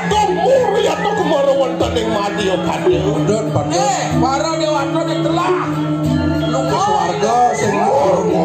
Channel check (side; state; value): both; identical; correlation 1.00